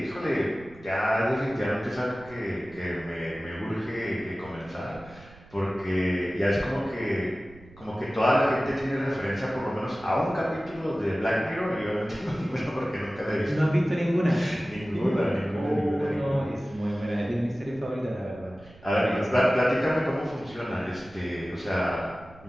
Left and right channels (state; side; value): noise; right; rumble, 22 dB below the sound